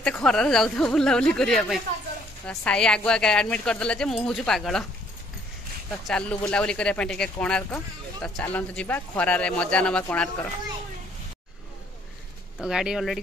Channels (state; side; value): normal; both; correlation 0.64